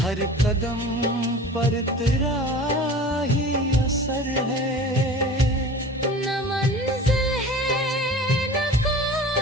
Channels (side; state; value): both; normal; correlation 0.40